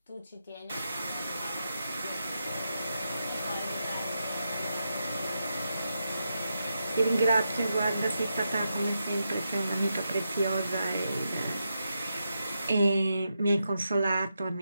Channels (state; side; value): inverted; both; correlation -0.86